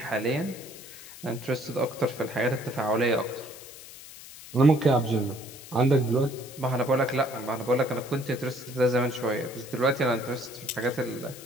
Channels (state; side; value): noise; left; hiss, 16 dB below the sound